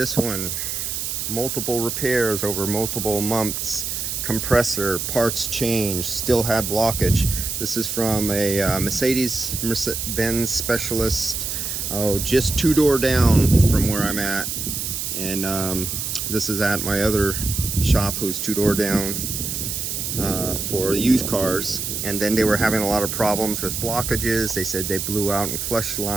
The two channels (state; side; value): noise; right; hiss, 3 dB below the sound